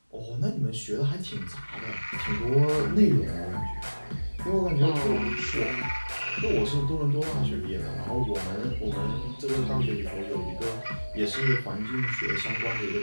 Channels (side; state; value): both; inverted; correlation -1.00